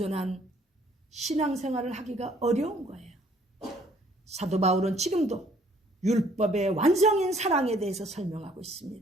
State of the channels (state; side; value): normal; both; correlation 0.61